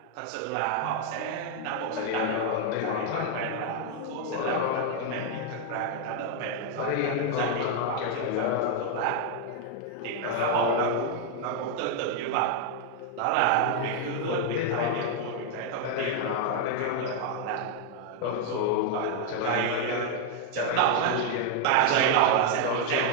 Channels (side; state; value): both; different; correlation 0.00